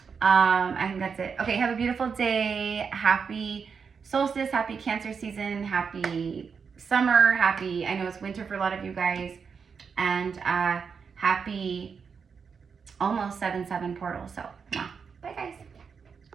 I think that's it. Okay, have a beautiful day. Happy solstice, happy Cancer season, happy summer, happy, I know it's winter for a lot of you guys, and happy almost 7/7 portal. So, bye guys.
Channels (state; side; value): quieter; left; 6.0 dB